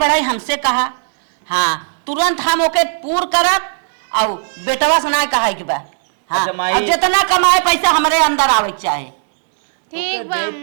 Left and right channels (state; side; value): silent; left; digital silence